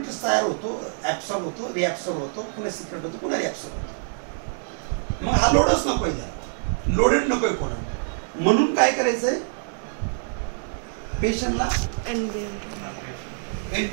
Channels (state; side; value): silent; left; digital silence